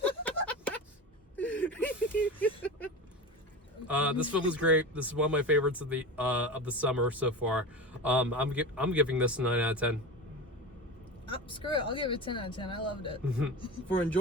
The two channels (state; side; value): normal; both; correlation 0.28